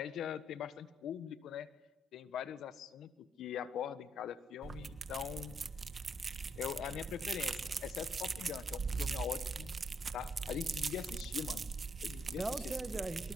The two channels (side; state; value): both; normal; correlation 0.75